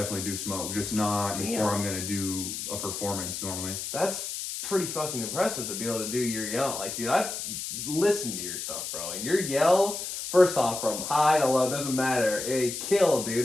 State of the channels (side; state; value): left; noise; hiss, 5 dB below the sound